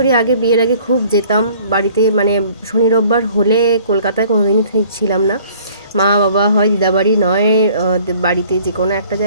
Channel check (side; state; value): both; inverted; correlation -0.55